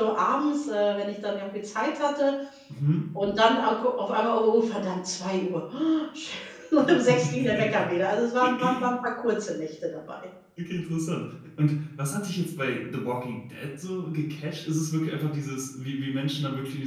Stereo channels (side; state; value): both; identical; correlation 1.00